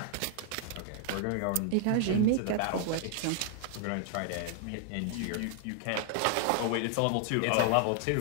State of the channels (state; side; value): different; both; correlation 0.00